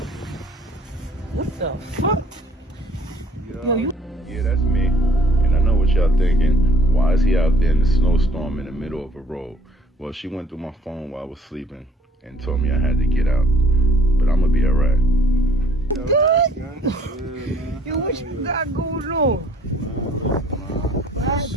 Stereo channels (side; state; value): both; normal; correlation 0.59